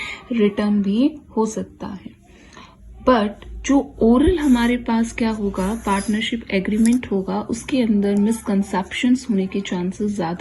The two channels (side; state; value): both; identical; correlation 1.00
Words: रिटर्न भी हो सकता है. बट जो ओरल हमारे पास क्या होगा, पार्टनरशिप एग्रीमेंट होगा, उसके अंदर मिसकंसेप्शंस होने के चांसेस